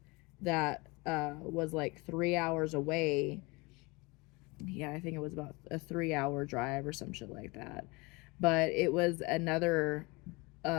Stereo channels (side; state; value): right; quieter; 26.0 dB